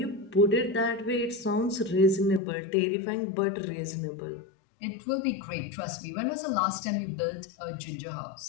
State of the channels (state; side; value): drops out; right; at 2.4 s